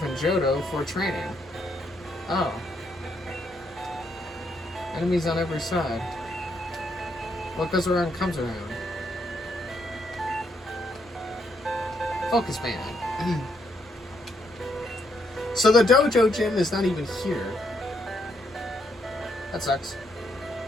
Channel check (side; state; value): both; normal; correlation 0.75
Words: in Johto for training. Oh. Enemies on every side. What goes around comes around. Focus man. So the dojo gym is not even here. That sucks.